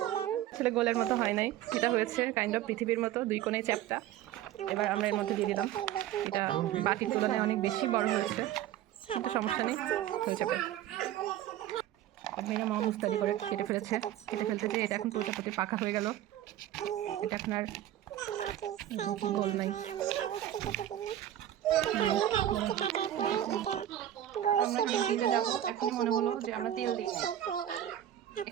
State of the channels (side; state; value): left; quieter; 12.2 dB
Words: আসলে গোলের মতো হয় নাই, এটা হয়েছে কাইন্ড অফ পৃথিবীর মতো 2 কোণে চ্যাপ্টা। এবার আমরা এর মধ্যে দিয়ে দিলাম, এটা বাকির তুলনায় অনেক বেশি বড় হয়েছে, সমস্যা নেই, হয়ে যাবে। ভাইরা মামা মুস্তাদি করে কেটে ফেলতে এটা এখন পুরোটা প্রতি পাকা হয়ে গেল। এটা এখন আর গোল নাই। মনে হলো যে আমরা তেল দিচ্ছি,